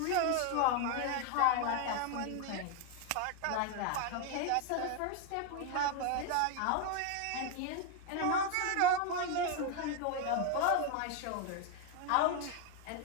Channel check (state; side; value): different; both; correlation 0.01